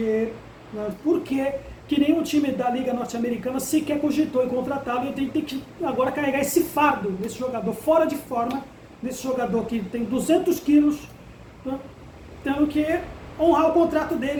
nenhum time da Liga Norte-Americana sequer cogitou em contratá-lo, e tem que agora carregar esse fardo desse jogador fora de forma, desse jogador que tem 200 quilos, né, tendo que honrar o contrato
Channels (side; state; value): both; identical; correlation 1.00